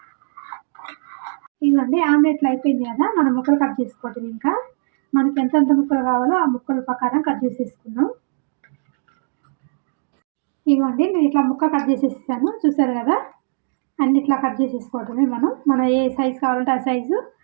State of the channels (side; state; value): left; silent; digital silence